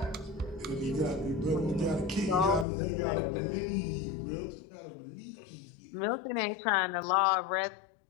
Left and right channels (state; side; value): drops out; right; at 2.7 s